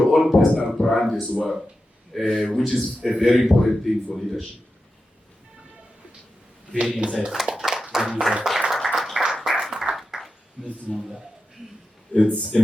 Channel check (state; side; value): normal; both; correlation 0.90